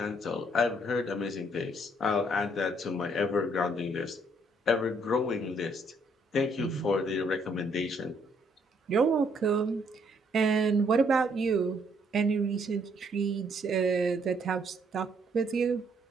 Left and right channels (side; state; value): both; normal; correlation 0.68